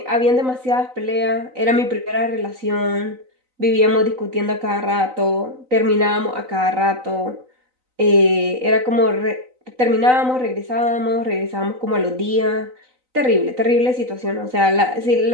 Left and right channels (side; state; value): left; late; 3.9 ms